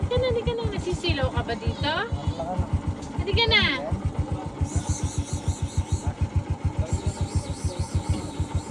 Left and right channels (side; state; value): both; identical; correlation 1.00